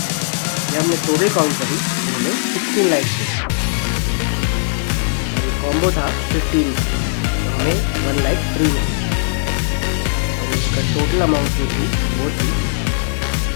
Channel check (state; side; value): silent; right; 64 dB below the other